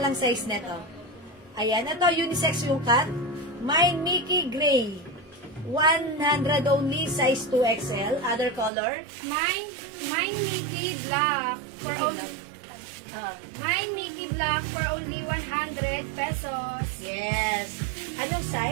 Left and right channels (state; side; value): drops out; left; at 8.7 s